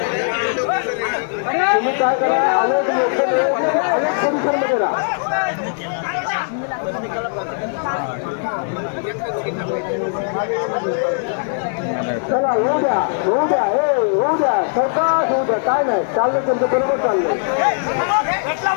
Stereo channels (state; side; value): silent; right; digital silence